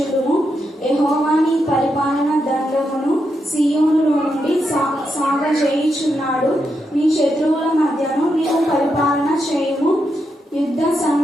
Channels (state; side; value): normal; both; correlation 0.83